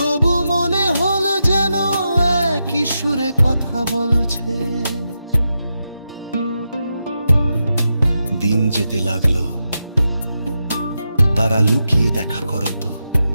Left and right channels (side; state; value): both; inverted; correlation -0.87